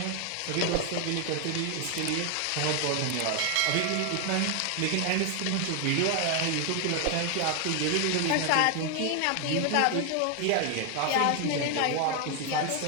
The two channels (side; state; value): both; different; correlation 0.00